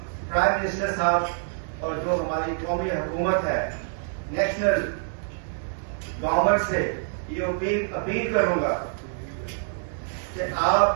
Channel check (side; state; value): left; silent; 61 dB below the other